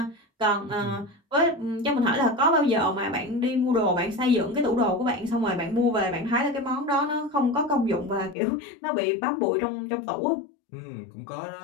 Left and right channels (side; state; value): right; drops out; at 8.3 s